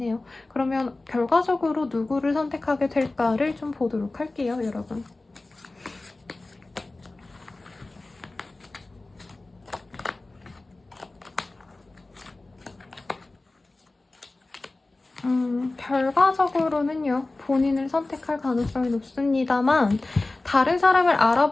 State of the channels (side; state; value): right; quieter; 3.1 dB